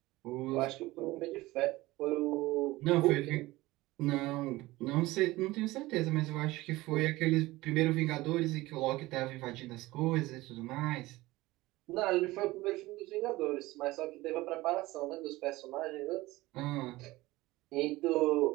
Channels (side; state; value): left; quieter; 19.1 dB